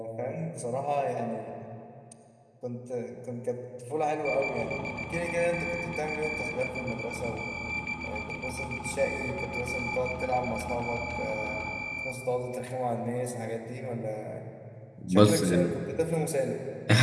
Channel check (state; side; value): identical; both; correlation 1.00